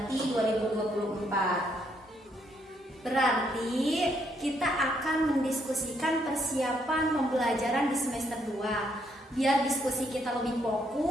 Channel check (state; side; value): normal; both; correlation 0.73